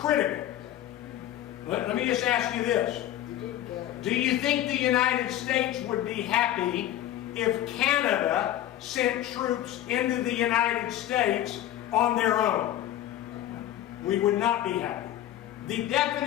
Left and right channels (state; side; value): quieter; right; 12.7 dB